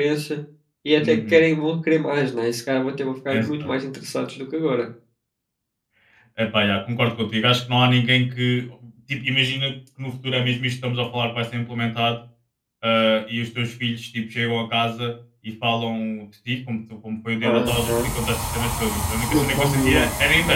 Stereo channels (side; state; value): both; identical; correlation 1.00